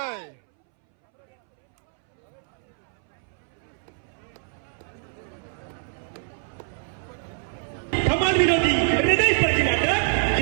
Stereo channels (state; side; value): silent; left; 62 dB below the other